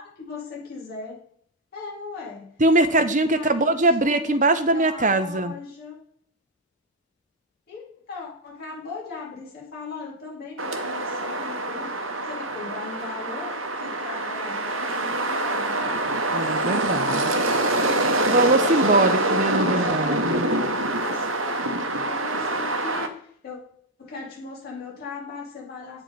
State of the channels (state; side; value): normal; both; correlation -0.04